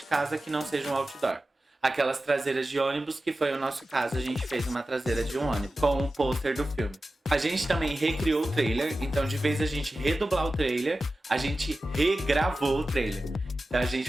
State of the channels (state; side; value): normal; both; correlation 0.94